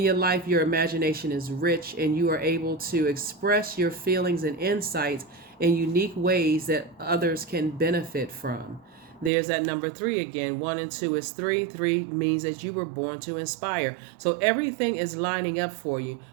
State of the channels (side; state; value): left; drops out; at 9.3 s